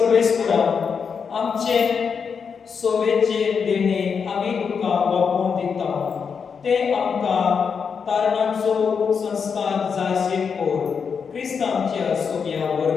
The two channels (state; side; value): quieter; right; 6.2 dB